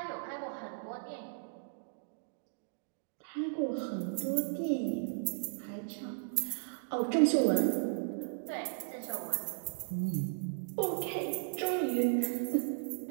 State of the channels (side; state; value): left; silent; digital silence